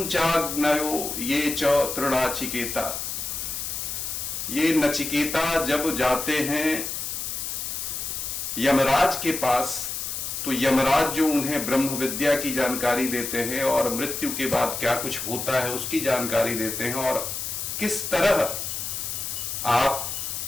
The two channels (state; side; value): noise; left; hiss, 4 dB below the sound